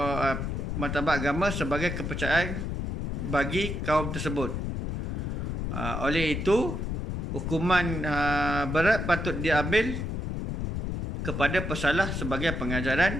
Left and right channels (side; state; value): left; noise; rumble, 2 dB below the sound